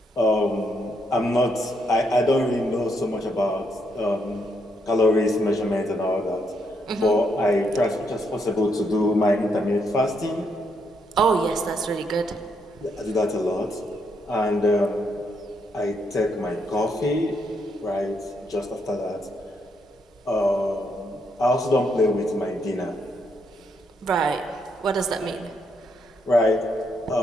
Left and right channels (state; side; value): normal; both; correlation 0.76